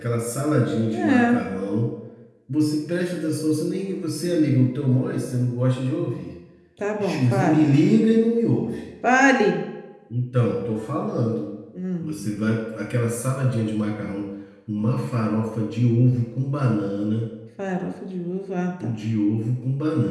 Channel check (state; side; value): identical; both; correlation 1.00